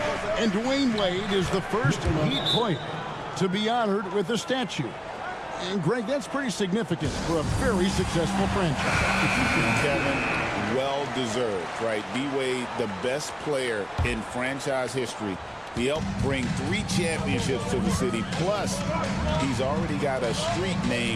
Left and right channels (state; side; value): identical; both; correlation 1.00